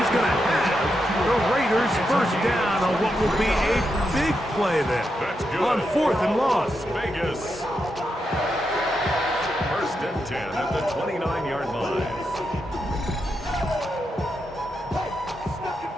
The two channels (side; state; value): both; normal; correlation 0.85